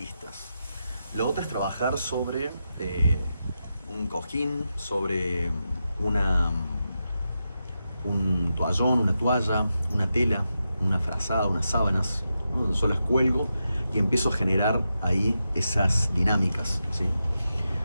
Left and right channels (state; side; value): inverted; both; correlation -0.88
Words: Lo otro es trabajar sobre un cojín, sobre un toallón, una toalla, una tela, una frazada, unas sábanas, ¿no? Donde yo las cuelgo y empiezo a generar ahí esas dinámicas, ¿sí?